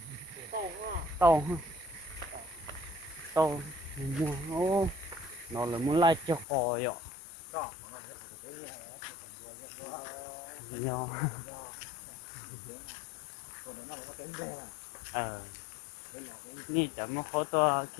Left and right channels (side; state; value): right; drops out; at 6.5 s